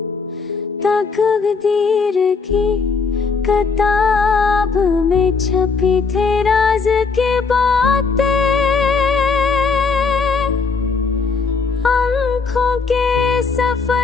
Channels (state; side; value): quieter; right; 4.8 dB